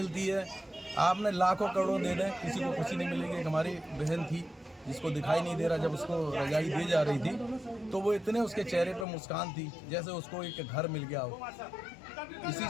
है, आपने लाखों करोड़ों दे दें, किसी को खुशी नहीं मिलेगी। एक हमारी बहन थी जिसको दिखाई नहीं दे रहा, जब उसको रजाई दी जा रही थी तो वो इतने उसके चेहरे पर मुस्कान थी जैसे उसको एक घर मिल गया हो। इसी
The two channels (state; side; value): drops out; right; at 9.1 s